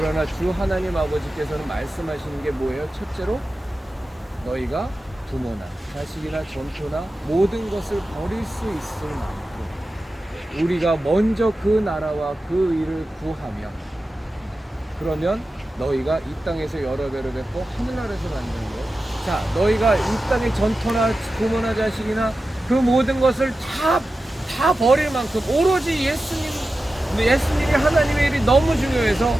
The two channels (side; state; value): both; normal; correlation 0.93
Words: 주 하나님 아버지께서는 말씀하시는 게 뭐예요? 첫째로 너희가 부모나 자식이나 전토나 모든 것을 버릴 수 있을 만큼 우리가 먼저 그 나라와 그 의를 구하며 그러면 너희가 이 땅에서 여러 배로 뵙고 하늘나라에서 만드는 거예요. 자, 너희가 이 땅의 전토나 부모나 자식이나 그 모든 것을 다 버릴 만큼 오로지 예수님이 하나님의 일이 너무 중요해서